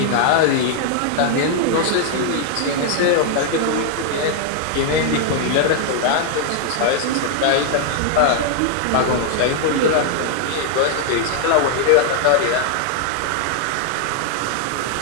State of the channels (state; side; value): different; both; correlation 0.00